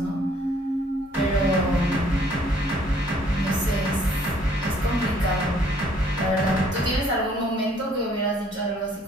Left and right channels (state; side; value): normal; both; correlation 0.61